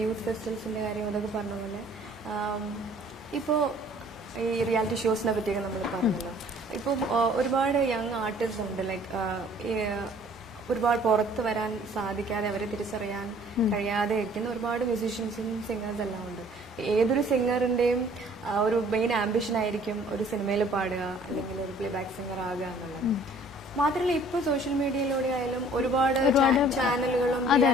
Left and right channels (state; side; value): normal; both; correlation 0.55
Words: യൂത്ത് ഫെസ്റ്റിവൽസിന്റെ കാര്യം അതൊക്കെ പറഞ്ഞ പോലെ ഇപ്പോൾ ഈ റിയാലിറ്റി ഷോസിനെ പറ്റിയൊക്കെ നമ്മൾ പറഞ്ഞല്ലോ. ഇപ്പം ഒരുപാട് യങ് ആർട്ടിസ്റ്റ് ഉണ്ട്, ലൈക്ക് ഒരുപാട് പുറത്ത് വരാൻ സാധിക്കാതെ അവരെ തിരിച്ചറിയാൻ കഴിയാതെ ഇരിക്കുന്ന ഒരുപാട് മ്യൂസീഷ്യൻസും സിംഗേഴ്സ് എല്ലാം ഉണ്ട്. ഏതൊരു സിംഗറിന്റെയും ഒരു മെയിൻ ആംബിഷൻ ആയിരിക്കും ഒരു സിനിമയിൽ പാടുക അല്ലെങ്കിൽ ഒരു പ്ലേ ബാക്ക് സിംഗർ ആകുക എന്നുള്ളത്. മാത്രമല്ല ഇപ്പൊ സോഷ്യൽ മീഡിയയിലൂടെ ആയാലും ഒരുപാട് ചാനലുകളും